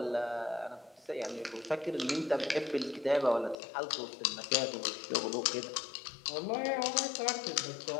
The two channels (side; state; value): right; drops out; at 3.6 s